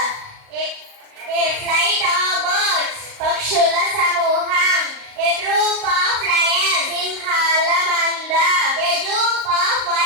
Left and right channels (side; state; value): left; late; 38 ms